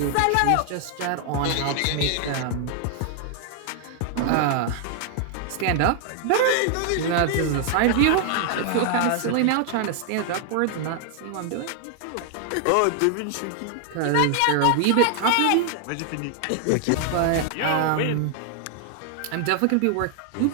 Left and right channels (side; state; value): both; different; correlation 0.00